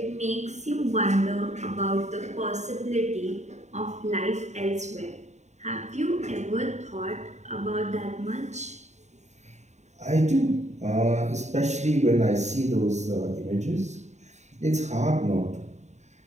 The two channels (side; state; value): left; late; 0.33 ms